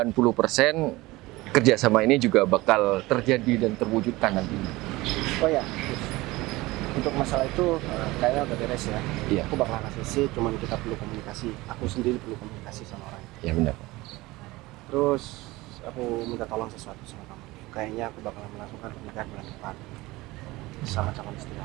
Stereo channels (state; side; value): quieter; left; 20.3 dB